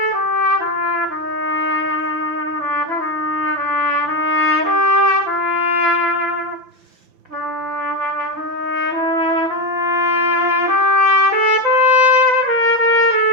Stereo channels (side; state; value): left; late; 5.9 ms